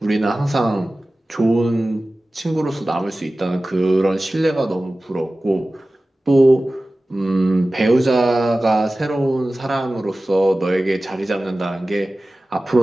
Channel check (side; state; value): both; normal; correlation 0.96